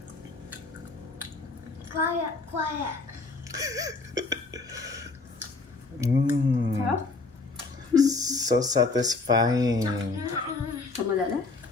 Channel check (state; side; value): quieter; right; 3.7 dB